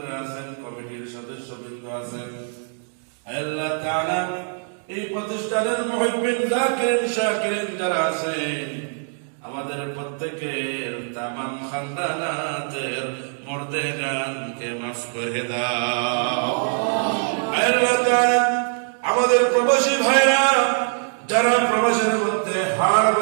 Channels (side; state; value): left; silent; digital silence